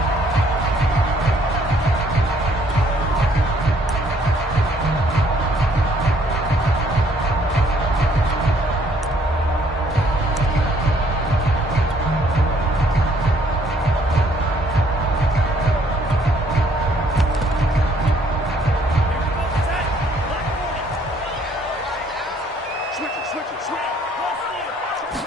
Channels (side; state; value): both; normal; correlation 0.64